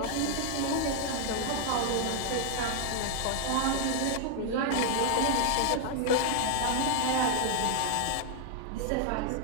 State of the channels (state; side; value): different; both; correlation 0.00